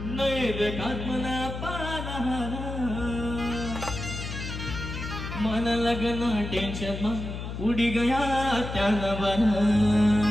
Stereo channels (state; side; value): noise; left; hum, 7 dB below the sound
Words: मन लगन टेंशन उड़ी गया त्या नवन